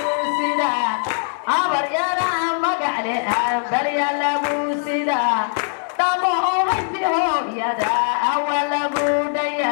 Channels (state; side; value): silent; right; digital silence